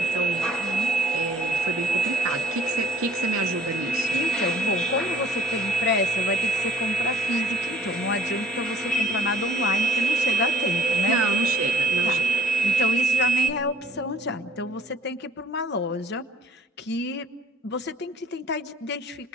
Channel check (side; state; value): both; normal; correlation 0.54